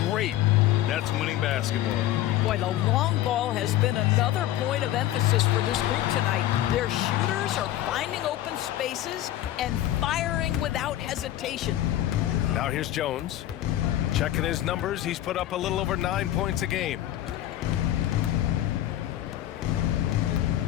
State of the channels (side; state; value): right; quieter; 13.4 dB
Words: great. That's winning basketball. Boy, the long ball has been another point of emphasis for this group tonight. Their shooters are finding open spaces and firing without hesitation. Now here's Jones. Checking his numbers, he's put up a little over 9 points a game.